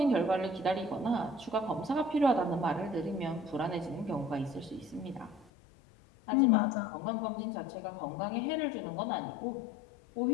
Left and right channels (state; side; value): drops out; right; at 5.5 s